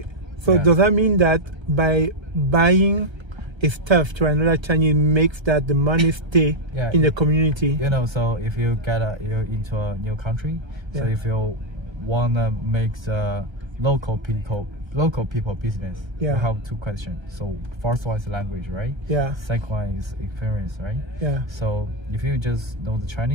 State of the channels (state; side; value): late; left; 1.3 ms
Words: So does that mean that by buying a stuff to another Chinese makes that the money stay in the community? So if you get you're into a new country, so if you wanna make the local people business, you have two questions. So first one is language, right? Yeah. Second one is experience, right? Yeah. So if you just know the